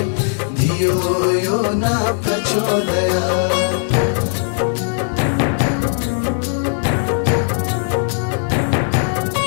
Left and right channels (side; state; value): right; silent; 56 dB below the other